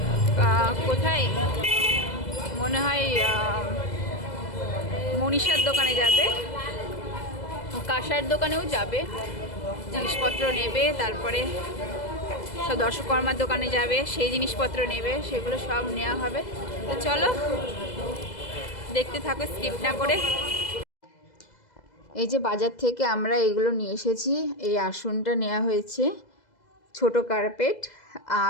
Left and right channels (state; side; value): late; right; 2.0 ms